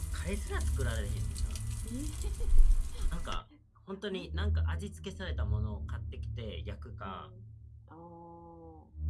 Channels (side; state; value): both; identical; correlation 1.00